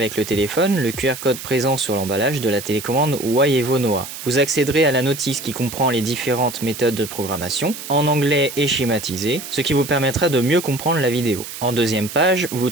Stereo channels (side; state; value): right; noise; hiss, 11 dB below the sound